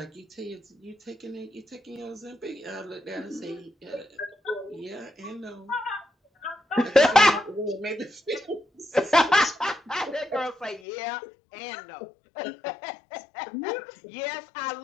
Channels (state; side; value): drops out; right; at 10.8 s